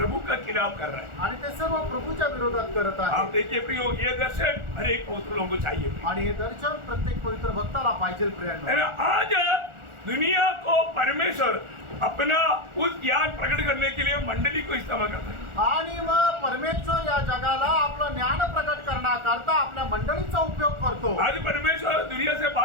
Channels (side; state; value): left; late; 1.4 ms